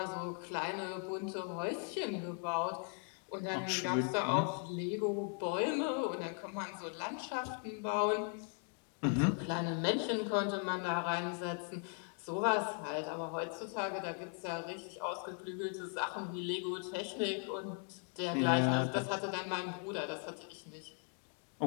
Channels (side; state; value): right; quieter; 39.9 dB